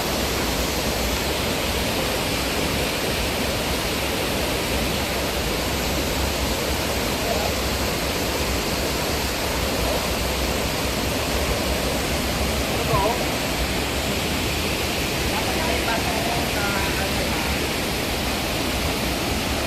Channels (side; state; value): both; identical; correlation 1.00